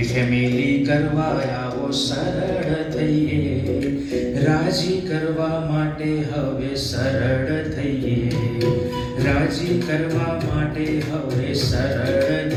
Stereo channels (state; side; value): identical; both; correlation 1.00